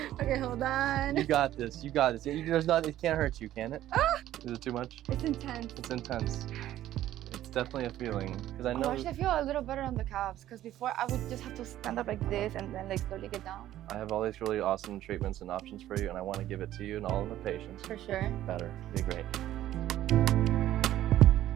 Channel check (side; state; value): left; quieter; 13.2 dB